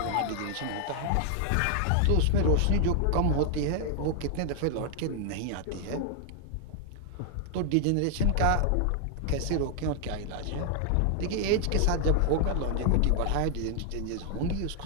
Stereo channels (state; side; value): different; both; correlation 0.00